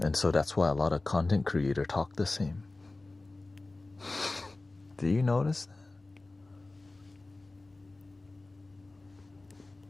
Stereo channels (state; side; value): quieter; right; 3.1 dB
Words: And so that's why a lot of content creators talk the same. Do you notice that?